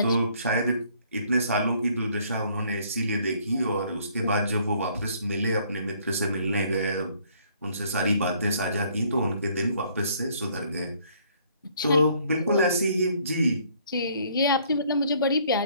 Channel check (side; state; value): both; inverted; correlation -0.63